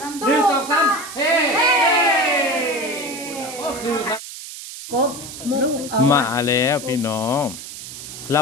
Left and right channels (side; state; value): right; noise; hiss, 12 dB below the sound